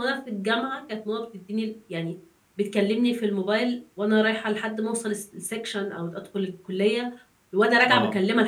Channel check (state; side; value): identical; both; correlation 1.00